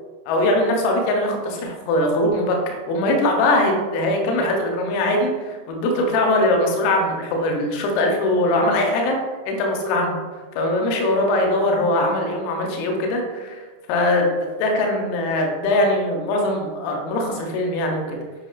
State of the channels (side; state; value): right; late; 31 ms